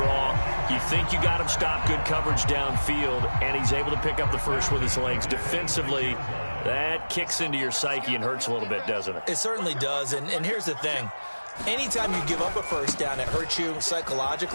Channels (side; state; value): both; inverted; correlation -1.00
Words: You think you got him stopped, good coverage downfield, and he's able to pick up the 1st with his legs. Defensively, that kicks into your psyche and hurts a little bit, doesn't it? It certainly does, and here's the thing. Anytime you give up a 1st down, it hurts you